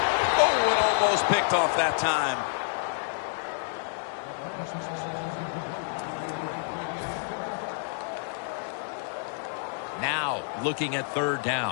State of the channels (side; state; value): right; silent; digital silence